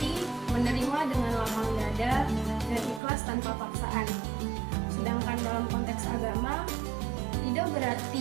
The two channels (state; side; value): drops out; left; at 3.0 s